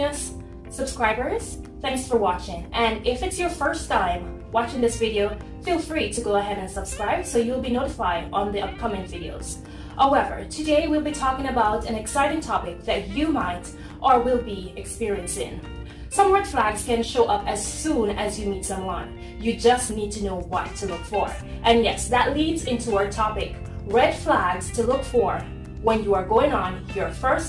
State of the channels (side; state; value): both; identical; correlation 1.00